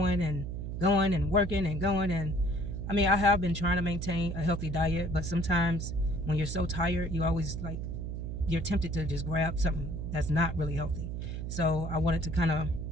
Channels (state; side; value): noise; right; hum, 5 dB below the sound